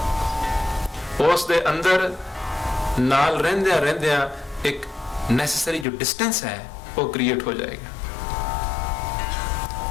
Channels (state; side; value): drops out; right; at 5.9 s